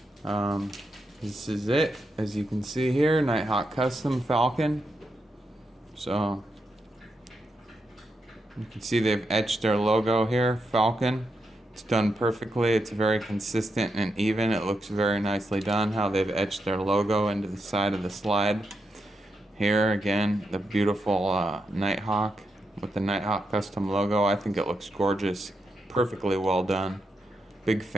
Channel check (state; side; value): normal; both; correlation 0.84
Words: This is it, as you can see here, Nighthawk custom Falcon. So you can see they've etched their logo here, Falcon. It's done perfectly. It's very consistent and even. It looks very nicely done how they've etched their logo into the side of the slide. Here again, the beautiful Nighthawk with the Nighthawk custom logo. I think it looks gorgeous, perfectly well done. Big